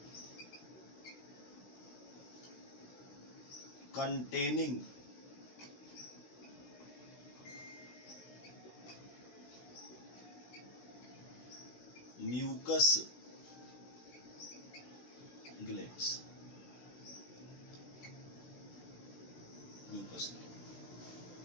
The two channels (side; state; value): right; late; 16 ms